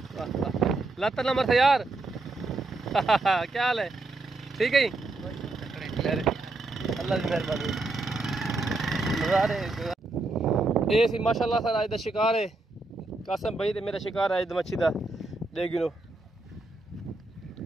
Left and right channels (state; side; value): quieter; left; 3.1 dB